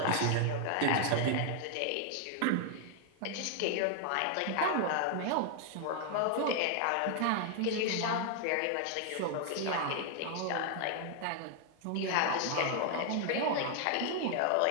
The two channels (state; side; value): different; both; correlation 0.00